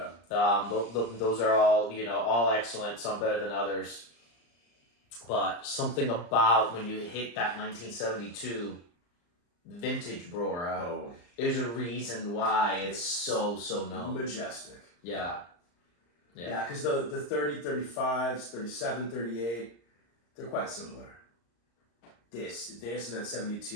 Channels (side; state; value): right; late; 34 ms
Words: Those are all, all excellent, some better than others. But something about when you hit that 1972 vintage Brora, there's a reason why it's so known. Majestic. Yeah. Yeah, because the 30, 35s, 37, 38, they're quite similar. This and that